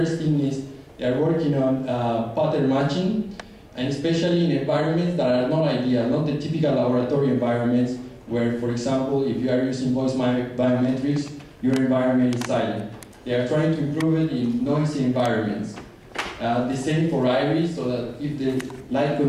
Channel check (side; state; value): both; identical; correlation 1.00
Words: thing is they are working on pattern matching, and especially in environments that are not ideal, not the typical laboratory environments where, for example, if you are using voice biometrics, your environment is silent. They are trying to improve it in noisy environments. The same for iris, so that if the light